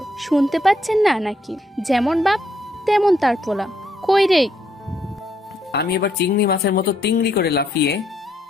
শুনতে পাচ্ছেন না নাকি? যেমন বাপ তেমন তার পোলা। কই রে? আমি এবার চিংড়ি মাছের মতো তিংড়ি করে লাফিয়ে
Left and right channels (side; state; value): both; normal; correlation 0.74